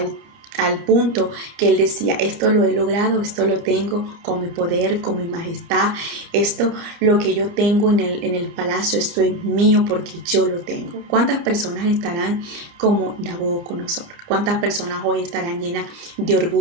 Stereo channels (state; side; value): late; left; 30 ms